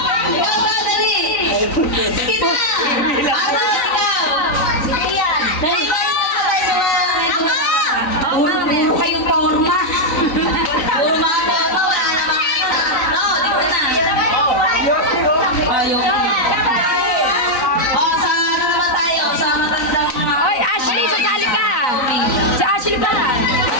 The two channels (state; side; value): late; right; 3.9 ms